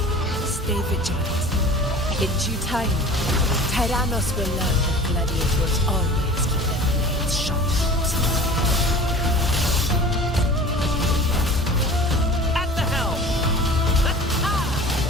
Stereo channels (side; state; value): both; normal; correlation 0.41